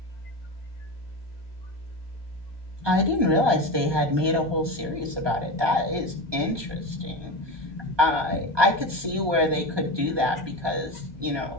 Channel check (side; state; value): left; late; 1.2 ms